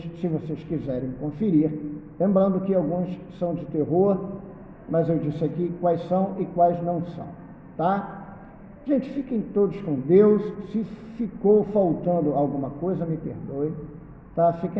se vocês quiserem conferir. Lembrando que alguns são de terror, mas eu disse aqui quais são e quais não são, tá? Gente, fiquem todos com Deus. Se ficou faltando alguma coisa, me perdoe, tá?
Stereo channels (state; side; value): identical; both; correlation 1.00